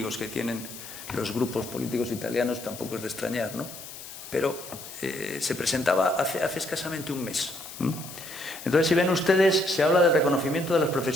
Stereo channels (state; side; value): noise; left; hiss, 13 dB below the sound